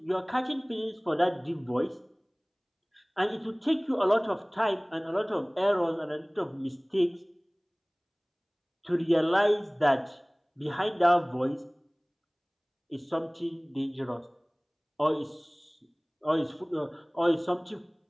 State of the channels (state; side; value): identical; both; correlation 1.00